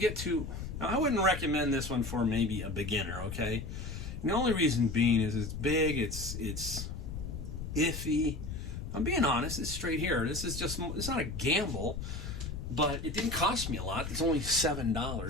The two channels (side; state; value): left; noise; rumble, 7 dB below the sound